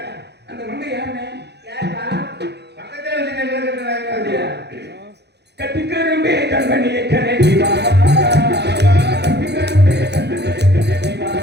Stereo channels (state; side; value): late; left; 0.49 ms